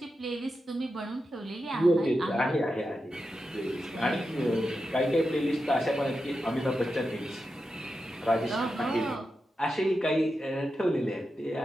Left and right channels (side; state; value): both; normal; correlation 0.89